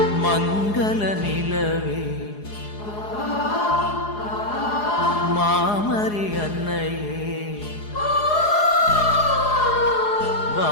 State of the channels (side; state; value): right; late; 4.8 ms